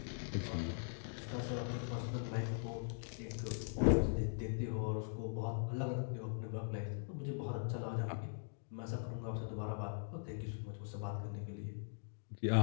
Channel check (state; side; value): silent; right; digital silence